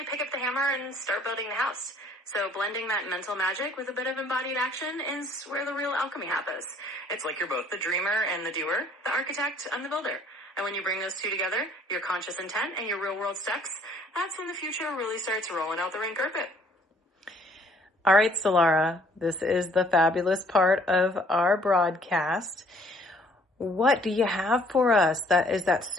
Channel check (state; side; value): normal; both; correlation 0.60